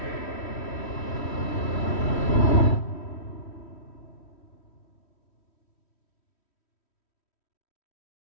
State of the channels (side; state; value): right; late; 3.1 ms